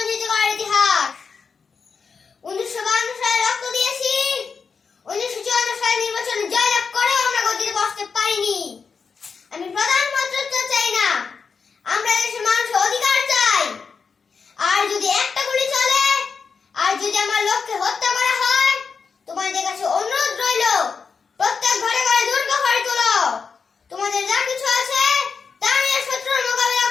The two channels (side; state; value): right; quieter; 5.5 dB